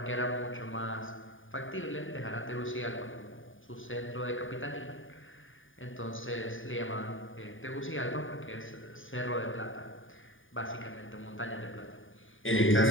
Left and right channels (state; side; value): late; right; 0.57 ms